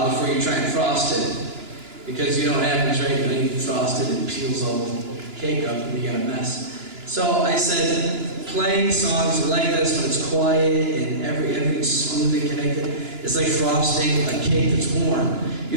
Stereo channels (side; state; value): left; late; 2.9 ms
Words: before you try and frost it. Because you know what happens, right? When you frost it, it peels all the cake up and you got a mess. So I said, playing songs like this when it's quiet and everything's smoothly connected, it's like frosting a cake that's warm.